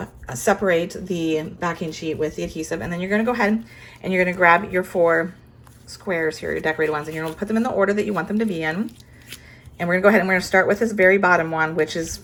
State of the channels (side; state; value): both; identical; correlation 1.00